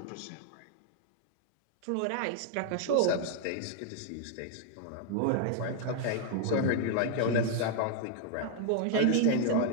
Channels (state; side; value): different; both; correlation 0.00